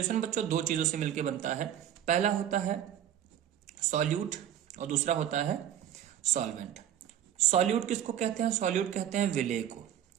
बच्चों दो चीजों से मिलकर बनता है। पहला होता है सॉल्यूट और दूसरा होता है सॉल्वेंट। सॉल्यूट किसको कहते हैं? सॉल्यूट कहते हैं विलेय को।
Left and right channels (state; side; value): quieter; left; 10.5 dB